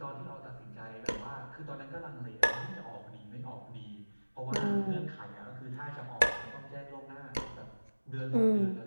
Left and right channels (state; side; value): inverted; both; correlation -1.00